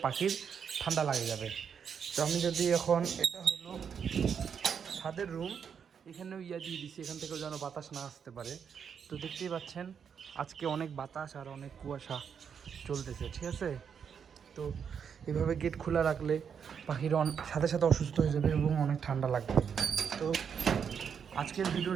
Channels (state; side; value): quieter; left; 7.2 dB